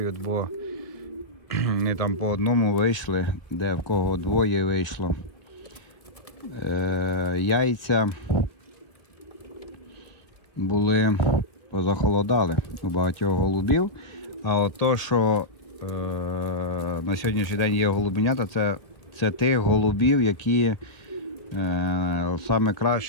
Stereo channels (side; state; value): right; late; 1.3 ms